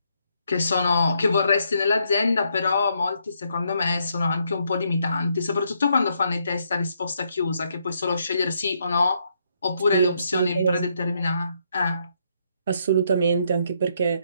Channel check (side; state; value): both; inverted; correlation -0.74